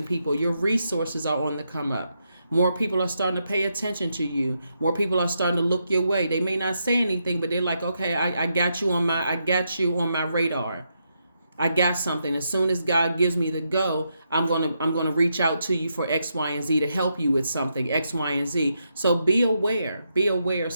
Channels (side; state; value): both; inverted; correlation -0.82